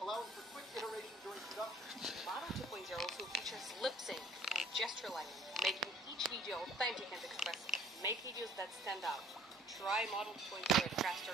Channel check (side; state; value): both; normal; correlation 0.56